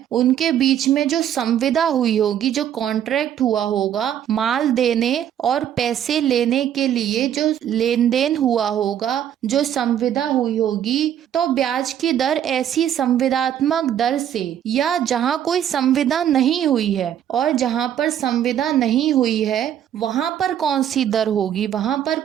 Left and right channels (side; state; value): left; quieter; 10.1 dB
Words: उनके बीच में जो संविदा हुई होगी, जो कॉन्ट्रैक्ट हुआ होगा, माल देने और पैसे लेने के लिए जो लेन देन हुआ होगा, जो संविदा हुई होगी, तो ब्याज की दर ऐसी संविदात्मक दर से या जहां कोई संविदा नहीं हुई है, और जहां पर संविदा नहीं हुई है वहां पर कौन सी दर होगी, वहां पर